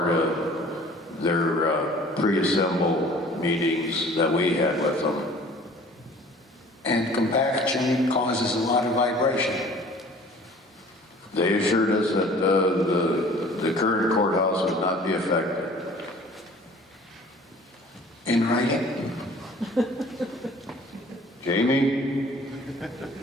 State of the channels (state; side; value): normal; both; correlation 0.50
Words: of their pre-assemble meetings that we had with them. And compaction causes a lot of vibration. They assured us that the current courthouse would not be affected. In writing? Jamie?